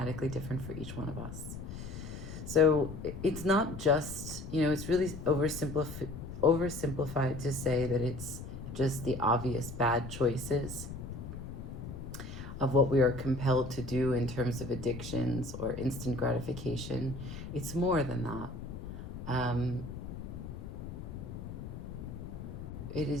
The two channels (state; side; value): noise; left; rumble, 9 dB below the sound